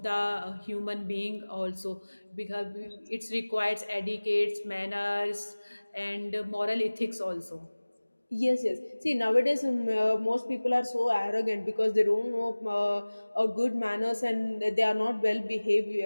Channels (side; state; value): both; inverted; correlation -1.00